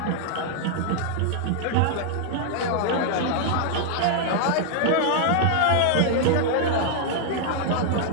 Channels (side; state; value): both; different; correlation 0.00